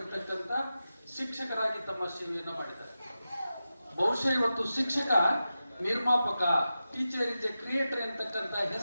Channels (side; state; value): both; inverted; correlation -0.92